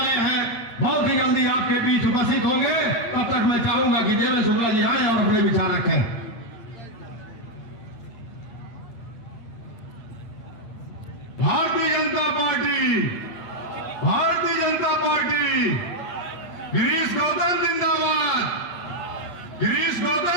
हैं, बहुत ही जल्दी आपके बीच उपस्थित होंगे। तब तक मैं चाहूंगा कि देवेंद्र शुक्ला जी आए और अपने विचार रखें। भारतीय जनता पार्टी, भारतीय जनता पार्टी, गिरीश गौतम जिंदाबाद, गिरीश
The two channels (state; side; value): late; right; 8.6 ms